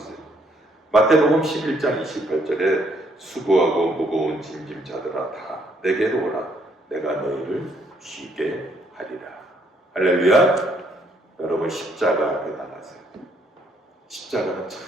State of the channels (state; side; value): normal; both; correlation 0.69